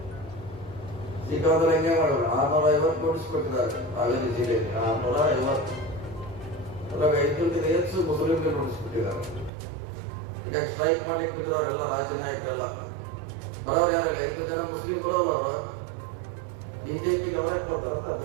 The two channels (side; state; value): left; drops out; at 9.5 s